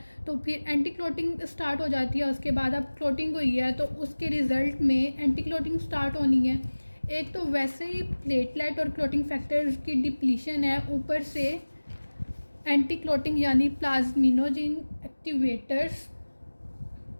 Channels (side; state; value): both; inverted; correlation -1.00